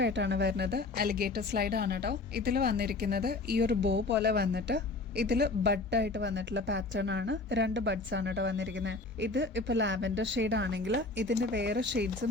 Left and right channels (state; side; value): quieter; right; 3.4 dB